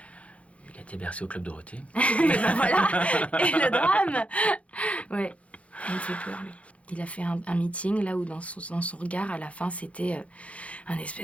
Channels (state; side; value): late; right; 0.064 ms